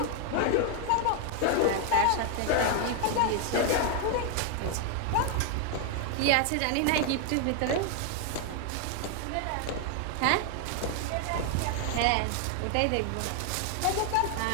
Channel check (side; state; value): both; different; correlation 0.00